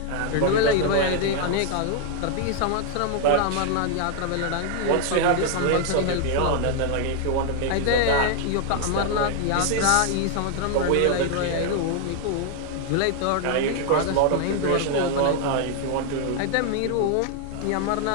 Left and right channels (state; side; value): different; both; correlation 0.00